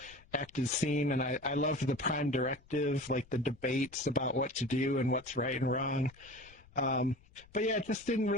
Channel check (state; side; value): noise; left; rumble, 26 dB below the sound